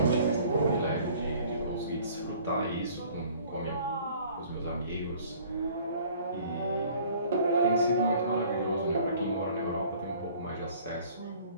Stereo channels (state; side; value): inverted; both; correlation -0.53